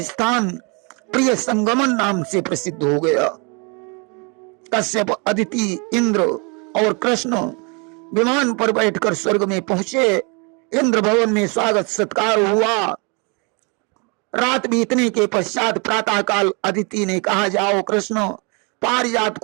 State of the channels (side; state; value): left; quieter; 32.6 dB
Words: स्थान प्रिय संगमन नाम से प्रसिद्ध हो गया। कश्यप, अदिति, इंद्र और कृष्ण विमान पर बैठकर स्वर्ग में पहुंचे। इंद्र भवन में स्वागत सत्कार हुआ। रात बीतने के पश्चात प्रातः काल अदिति ने कहा, जाओ कृष्ण पारिजात